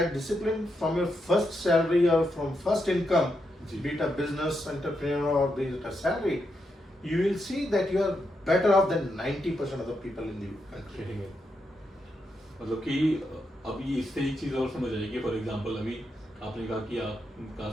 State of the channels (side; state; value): both; normal; correlation 0.83